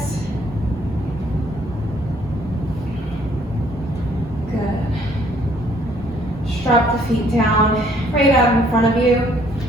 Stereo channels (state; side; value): normal; both; correlation 0.63